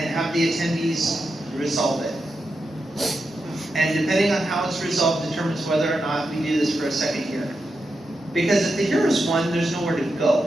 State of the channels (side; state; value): both; normal; correlation 0.87